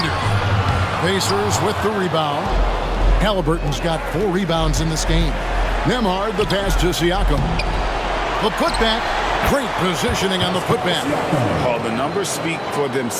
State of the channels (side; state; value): both; identical; correlation 1.00